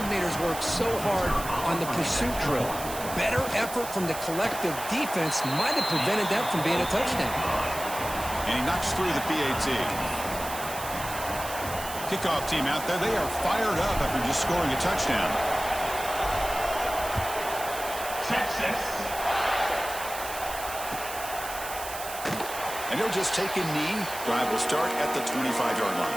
work so hard on the pursuit drill. Better effort from the collective defense might have prevented that from being a touchdown. And he knocks through the PAT. Kickoff team out there, they are fired up after just scoring a touchdown. Texas. And he'll just take a knee. Drive will start at the 25-yard line.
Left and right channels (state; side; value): noise; right; hiss, 10 dB below the sound